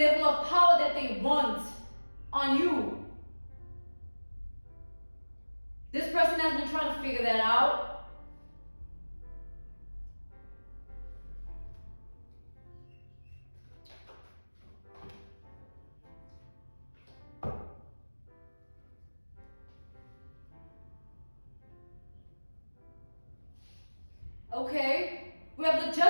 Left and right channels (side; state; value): both; inverted; correlation -1.00